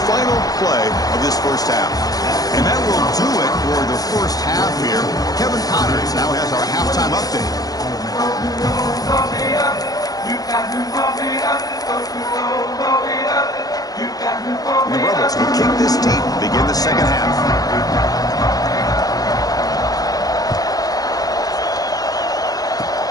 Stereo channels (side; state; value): right; late; 0.18 ms